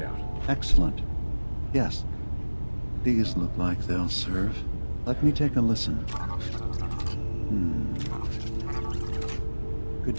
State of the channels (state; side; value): inverted; both; correlation -1.00